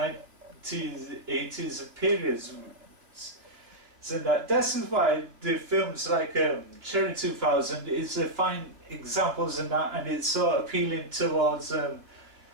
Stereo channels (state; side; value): late; left; 2.9 ms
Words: 80s periods. So this is why the films like Cherry 2000 is a fine examples in that, and it's so appealing towards